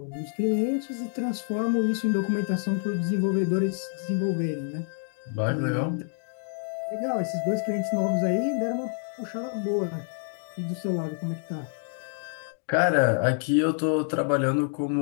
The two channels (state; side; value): silent; right; digital silence